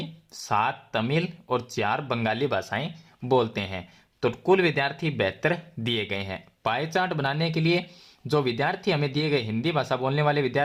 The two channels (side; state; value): both; identical; correlation 1.00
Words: 7 तमिल और 4 बंगाली भाषाएं बोलते हैं। तो कुल विद्यार्थी 72 दिए गए हैं। पाई चार्ट बनाने के लिए जो विद्यार्थी हमें दिए गए, हिंदी भाषा बोलने वाले